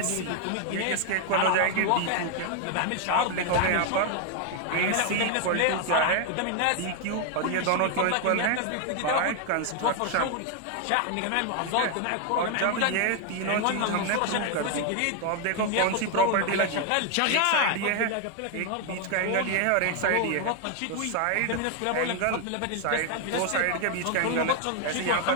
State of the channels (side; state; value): both; different; correlation 0.00